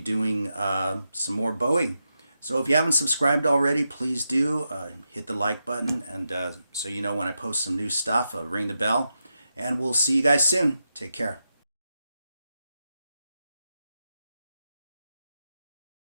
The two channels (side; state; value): both; inverted; correlation -0.87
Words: some more Bowie. So if you haven't subscribed already, please do. Hit the like button, and so you know when I post some new stuff, ring the bell. And we'll see you guys soon. Take care.